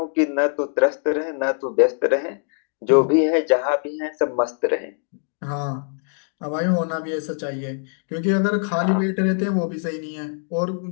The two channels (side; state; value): right; silent; 64 dB below the other